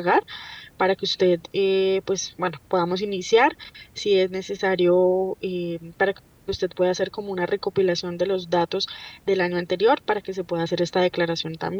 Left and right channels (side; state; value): both; identical; correlation 1.00